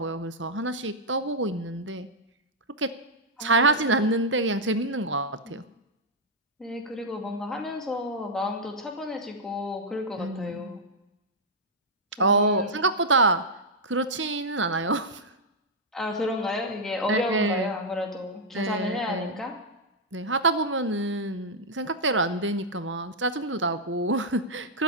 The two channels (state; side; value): normal; both; correlation -0.05